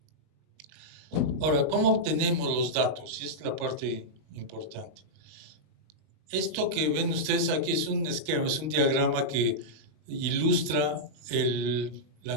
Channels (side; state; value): left; late; 20 ms